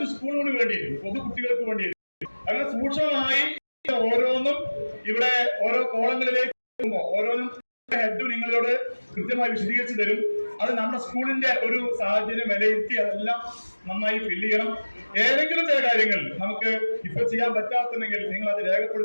സ്കൂളുകൾക്ക് വേണ്ടിയായിരിക്കും, പൊതുകുട്ടികൾക്ക് വേണ്ടിയായിരിക്കും. അങ്ങനെ സൂക്ഷ്മമായി ഓരോന്നും ഇവിടെ ഓരോ കോളങ്ങളിലേക്ക് പോകുമ്പോൾ ഓരോന്നും ഹെഡ് നിങ്ങളോട് കൃത്യമായി വിശദീകരിച്ചു തരും. അത് നമ്മുടെ സ്കൂളിന്റെ ഒരു സാഹചര്യം വിലയിരുത്തി അതെല്ലാം നന്നായി ഫില്ല് ചെയ്യണം. ഏതെങ്കിലും ചില കാര്യങ്ങൾ നമുക്ക് ഇപ്പൊ ചെയ്യാൻ പറ്റാത്തുണ്ടെങ്കിൽ നിങ്ങൾ അത്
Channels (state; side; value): inverted; both; correlation -1.00